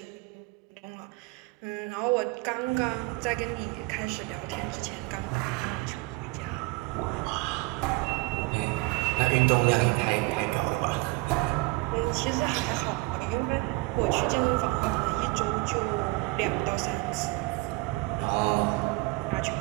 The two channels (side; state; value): left; quieter; 23.5 dB